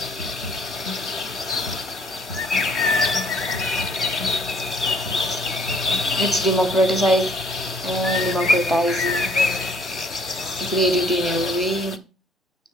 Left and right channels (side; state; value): both; normal; correlation 0.61